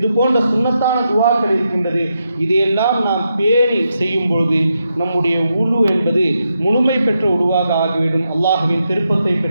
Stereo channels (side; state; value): both; inverted; correlation -0.84